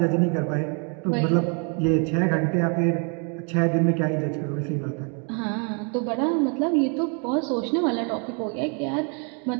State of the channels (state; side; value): quieter; left; 37.0 dB